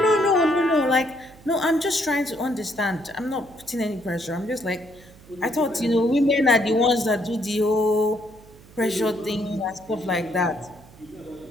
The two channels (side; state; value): right; noise; hum, 23 dB below the sound